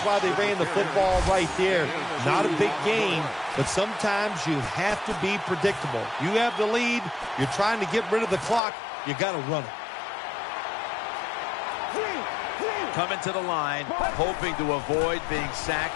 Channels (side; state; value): right; drops out; at 8.6 s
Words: why they ran the football right there. Not a big game, but sometimes you have to be predictable. You have the lead. You're trying to get rid of the clock. You got to run it. Coming to the line, hoping to avoid being